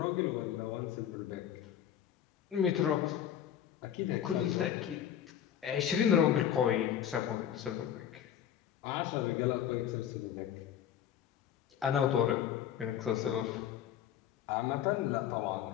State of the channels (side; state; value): right; quieter; 9.9 dB